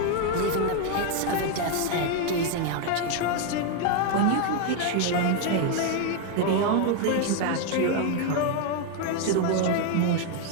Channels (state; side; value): different; both; correlation 0.01